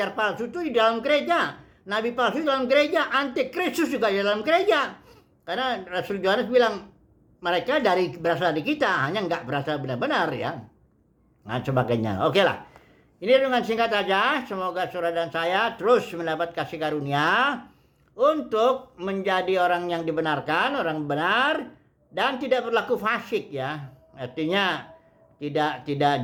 palsu itu di dalam gereja, nabi palsu di dalam gereja, antikristus juga di dalam gereja. Karena Rasul Yohanes bilang mereka berasal dari kita, hanya enggak berasal benar-benar ya. Nah sebagainya. Oke lah. Ini dengan singkat saja, semoga saudara dan saya terus mendapat kasih karunia untuk menjadi orang yang dibenarkan, orang benar, dan tidak berlaku fasik ya, artinya tidak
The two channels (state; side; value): identical; both; correlation 1.00